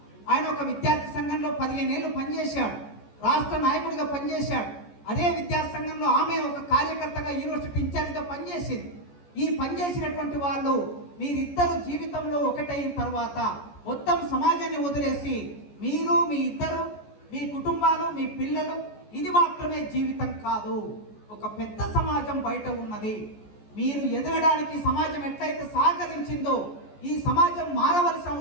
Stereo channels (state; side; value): late; right; 14 ms